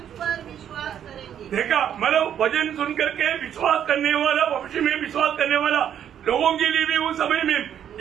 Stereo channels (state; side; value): quieter; left; 9.5 dB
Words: पर विश्वास करेंगे। देखा, मतलब वचन सुन करके विश्वास करने वाला, भविष्य में विश्वास करने वाला लोगों के लिए भी उस समय में